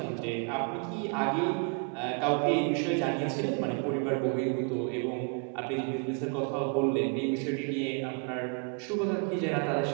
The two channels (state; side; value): quieter; left; 37.9 dB